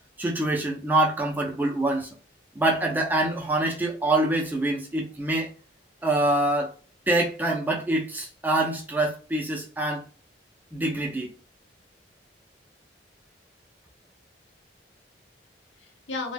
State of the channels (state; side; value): normal; both; correlation 0.51